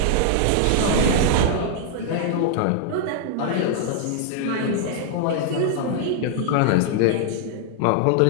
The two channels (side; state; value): both; different; correlation -0.01